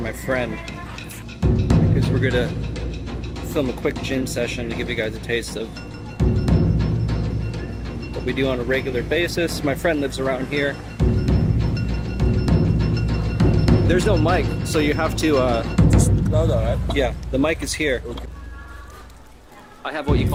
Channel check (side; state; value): both; identical; correlation 1.00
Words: friend because we're gonna film a quick gym session to give you guys a taste of what we do on a regular basis. My friend lives around here. There's no mic, so you have to yeah, the mic is here. I have what you